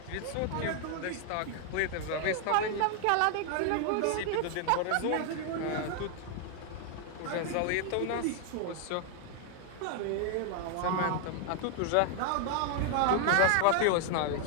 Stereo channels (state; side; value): different; both; correlation 0.00